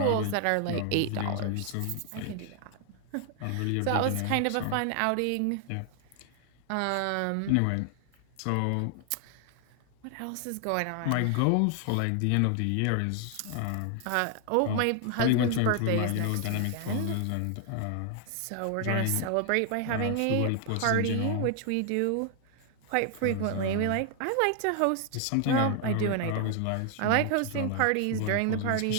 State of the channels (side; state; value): both; different; correlation 0.00